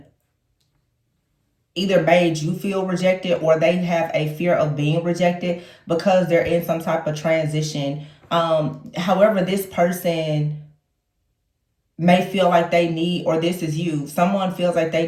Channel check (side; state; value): both; identical; correlation 1.00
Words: either made you feel rejected or they have a fear of being rejected because they're in some type of transition. However, this person may feel like they need, or this is you, someone feels like they